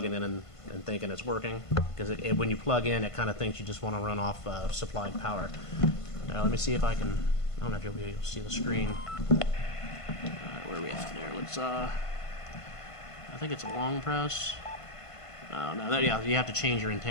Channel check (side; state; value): right; late; 1.5 ms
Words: in and thinking it's working, because when you plug in, it kind of thinks you just want to run off supplied power. Now let me see if I can. I don't know if you'll be able to see the screen. Where are we at there? Let's. I think it's a long press. Oh no, yeah, you have to change your